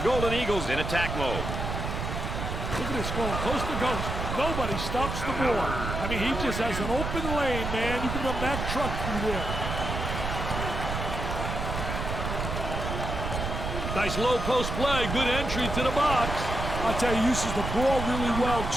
Golden Eagles in attack mode. Look at this going coast to coast. Nobody stops the ball. I mean, he just has an open lane, man. You can run that truck through there. Nice low post play. Good entry to the box. I'll tell you, he uses the ball really well,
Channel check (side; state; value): right; noise; rumble, 4 dB below the sound